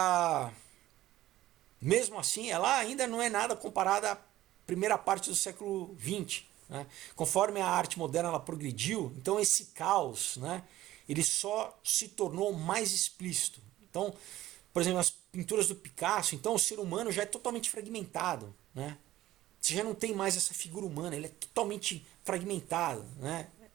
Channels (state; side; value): quieter; left; 15.0 dB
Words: mesmo assim, ela ainda não é nada comparada à primeira parte do século XX, né? Conforme a arte moderna ela progrediu, então esse caos, né, ele só se tornou mais explícito. Então, por exemplo, as pinturas do Picasso, então o ser humano já é totalmente fragmentado, né? Você já não tem mais essa figura humana, ele é totalmente fragmentado, né?